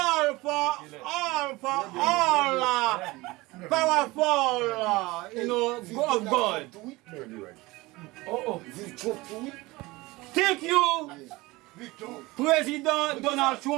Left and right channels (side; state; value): left; quieter; 21.3 dB